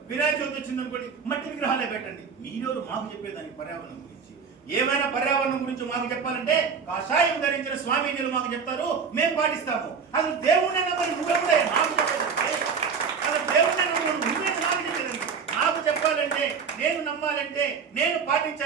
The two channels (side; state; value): left; quieter; 5.9 dB